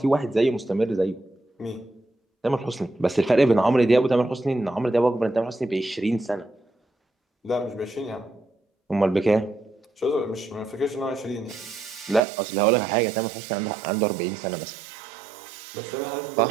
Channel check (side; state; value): left; drops out; at 12.2 s